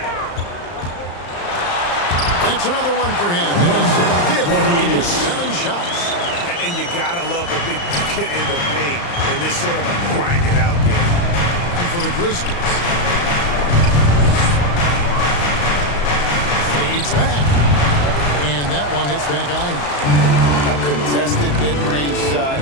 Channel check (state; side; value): late; right; 35 ms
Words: That's another one for him. His 5th in just 7 shots. And you gotta love the big bucket in the paint in this sort of a grinded-out game. And for the Grizzlies. Fades back. And that one hits back iron. A contested mid-range shot